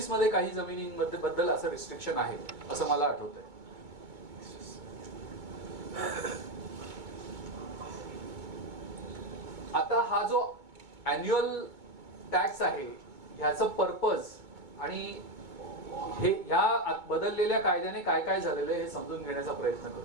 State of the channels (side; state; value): left; late; 2.2 ms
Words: मध्ये काही जमिनींमध्ये बद्दल असं रिस्ट्रिक्शन आहे असं मला आठवतंय. आता हा जो अॅन्युअल टॅक्स आहे ह्याचं पर्पज आणि हे ह्या बदललेल्या कायद्याने काय काय झालेलं आहे हे समजून घेण्याचा प्रयत्न